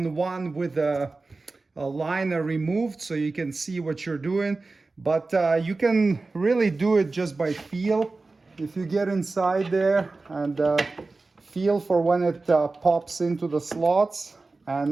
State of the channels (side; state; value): left; quieter; 3.6 dB